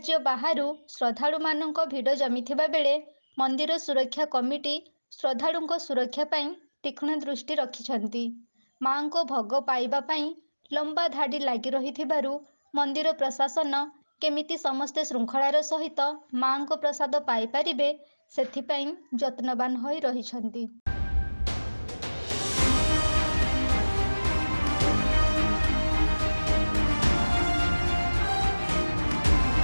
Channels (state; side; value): inverted; both; correlation -1.00